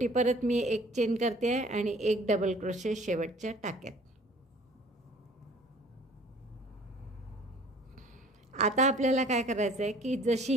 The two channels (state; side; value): normal; both; correlation 0.52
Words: परत मी 1 चेन करते आहे आणि 1 डबल क्रोशे शेवटच्या टाक्यात. आता आपल्याला काय करायचं आहे की जशी